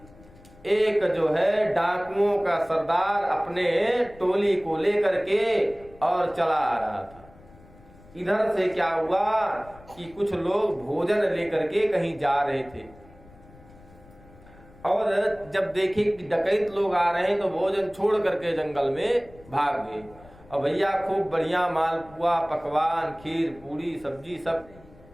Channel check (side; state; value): left; noise; rumble, 24 dB below the sound